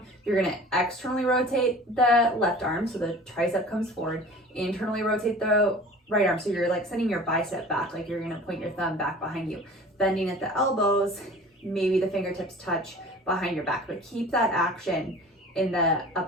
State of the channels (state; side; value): normal; both; correlation 0.43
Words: You're going to externally rotate the left arm so the tricep comes forward, internally rotate the right arm, so you're like sending your bicep back, like you're going to point your thumb back behind you, bending at the elbows, maybe the fingertips touch behind your back, but keep that action in the